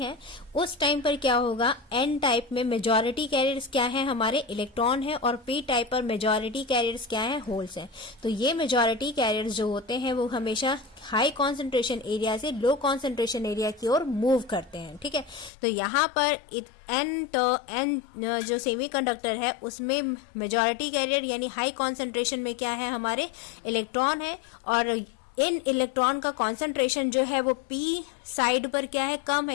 उस टाइम पर क्या होगा, N टाइप में मेजॉरिटी कैरियर्स क्या है, हमारे इलेक्ट्रॉन है, और P टाइप पर मेजॉरिटी कैरियर्स क्या है, होल्स हैं। तो ये मेजॉरिटी कैरियर्स जो होते हैं वो हमेशा हाई कॉन्सेंट्रेशन एरिया से लो कॉन्सेंट्रेशन एरिया की ओर मूव करते हैं। ठीक है, तो यहाँ पर N जो सेमीकंडक्टर है, उसमें मेजॉरिटी कैरियर यानी हाई कॉन्सेंट्रेशन में क्या है, हमारे इलेक्ट्रॉन है, और इन इलेक्ट्रॉन का कॉन्सेंट्रेशन जो है वो P साइड पर क्या है, कम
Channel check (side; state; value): right; drops out; at 15.5 s